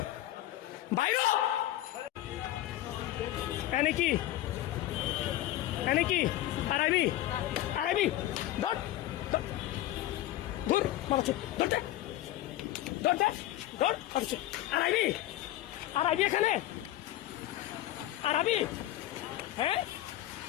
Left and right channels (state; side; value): quieter; right; 14.6 dB